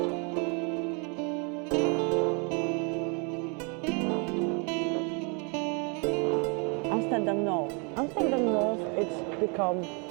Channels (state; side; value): quieter; left; 34.5 dB